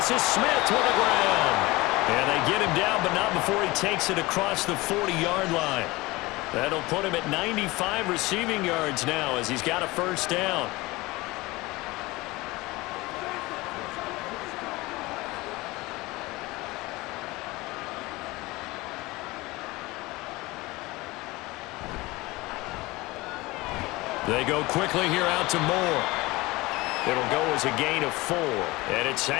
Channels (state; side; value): quieter; right; 21.4 dB